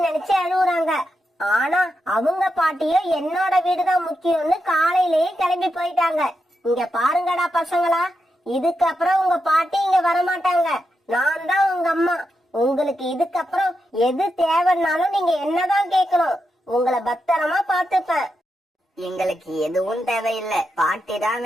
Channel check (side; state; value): both; normal; correlation 0.86